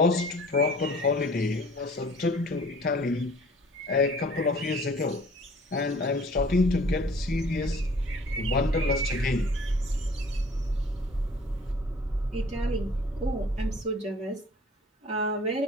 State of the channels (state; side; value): normal; both; correlation 0.51